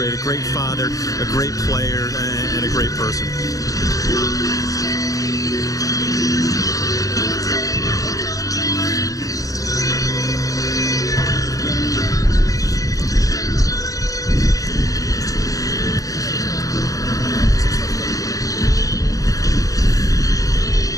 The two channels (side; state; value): right; late; 0.17 ms